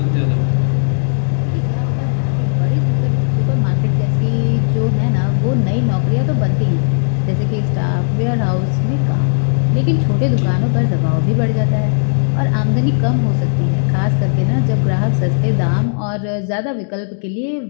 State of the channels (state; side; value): silent; right; digital silence